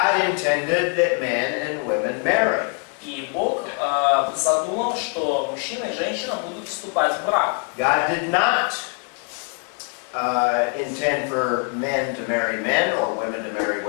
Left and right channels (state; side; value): quieter; right; 39.4 dB